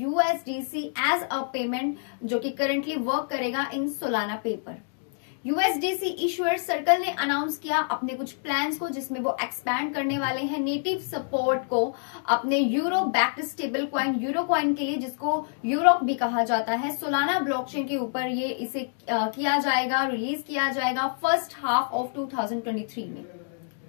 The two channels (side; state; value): right; silent; digital silence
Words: USDC as a payment, जो कि करंटली वर्क करेगा in Solana paper. USDC issuer Circle ने अनाउंस किया अपने कुछ प्लान्स को, जिसमें वो एक्सपैंड करने वाले हैं नेटिव सपोर्ट को अपने euro backed stable coin euro coin के लिए, जिसको यूरोक भी कहा जाता है। सोलाना ब्लॉकचेन के ऊपर ये इसे किया जाएगा, रिलीज किया जाएगा फर्स्ट हाफ ऑफ 2023 में।